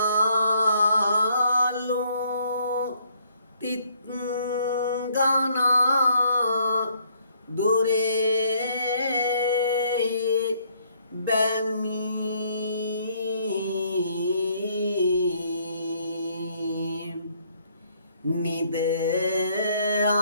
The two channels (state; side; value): inverted; both; correlation -0.67